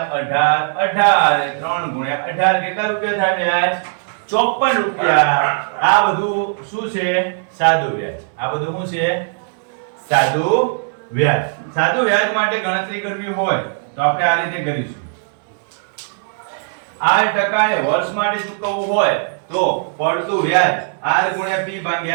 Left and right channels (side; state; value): left; silent; digital silence